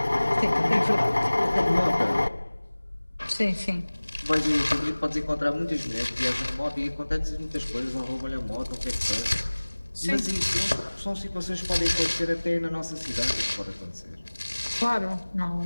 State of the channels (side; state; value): both; inverted; correlation -1.00